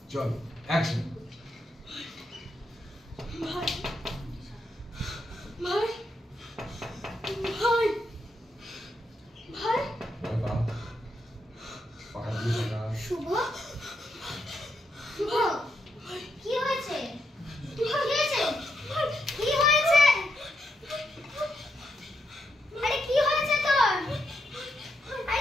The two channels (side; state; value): both; normal; correlation 0.81